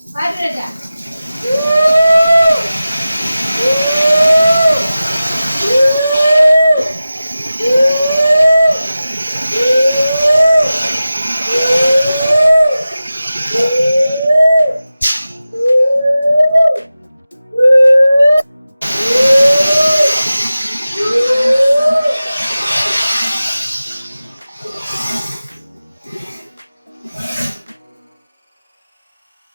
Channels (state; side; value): inverted; both; correlation -0.95